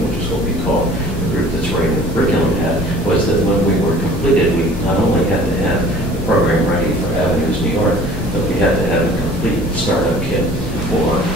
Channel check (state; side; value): normal; both; correlation 0.48